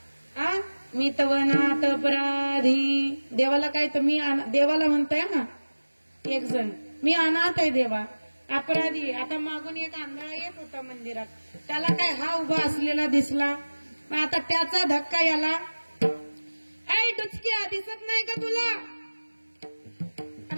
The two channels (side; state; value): both; inverted; correlation -1.00